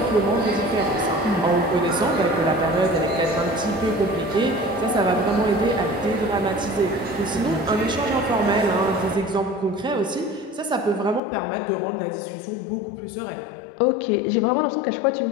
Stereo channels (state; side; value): drops out; right; at 11.2 s